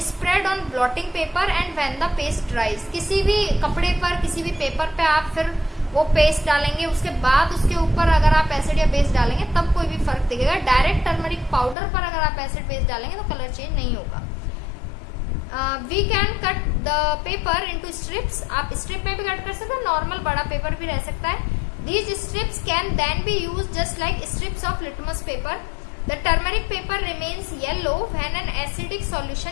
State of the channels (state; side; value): drops out; right; at 11.8 s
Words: spread on blotting paper and when the paste dries. किसी भी कपड़े पर, किसी भी पेपर पे आप फिर वो पेस्ट डालेंगे, उसके बाद उसके ऊपर अगर आप एसिड या बेस डालेंगे तब कोई भी फर्क दिखेगा। डायरेक्ट टर्मरिक पाउडर पर अगर आप एसिड बेस डालेंगे तो कलर चेंज नहीं होगा। We can cut the paper into strips. आप स्ट्रिप में भी कट कर सकते हैं, नॉर्मल बड़ा पेपर भी रह सकता है। These strips can then be use just like strips of litmus paper. The turmeric paper remains yellow when an acidic